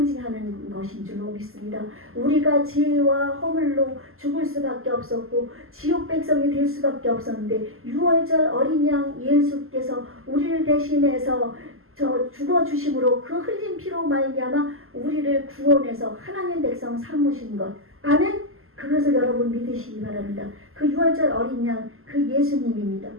것인 줄로 믿습니다. 우리가 죄와 허물로 죽을 수밖에 없었고 지옥 백성이 될 수밖에 없었는데 6월절 어린 양 예수께서 우리를 대신해서 저 죽어 주심으로 그 흘린 피로 말미암아 우리를 구원해서 하나님 백성 삼으신 것. 아멘. 그것을 여러분 믿으시기 바랍니다. 그 6월절 어린 양, 그 예수님입니다.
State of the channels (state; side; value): late; left; 0.62 ms